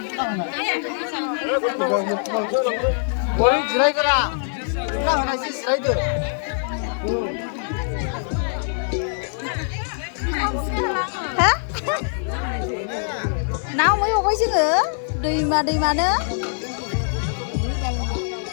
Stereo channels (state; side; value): silent; right; digital silence